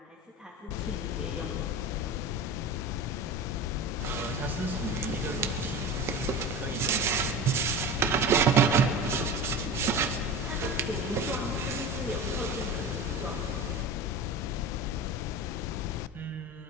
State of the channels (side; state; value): both; normal; correlation 0.30